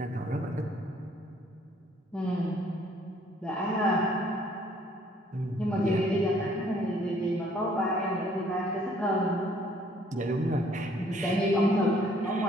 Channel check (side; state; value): both; normal; correlation 0.62